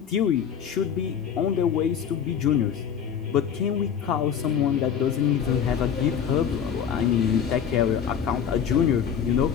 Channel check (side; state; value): right; quieter; 8.0 dB